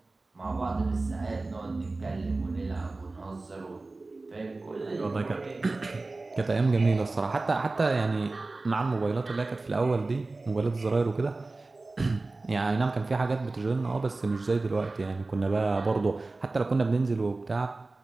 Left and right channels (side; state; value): left; quieter; 3.3 dB